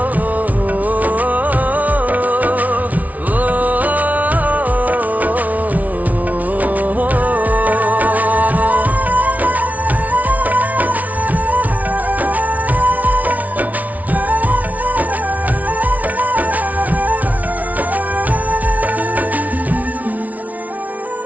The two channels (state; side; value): late; left; 0.072 ms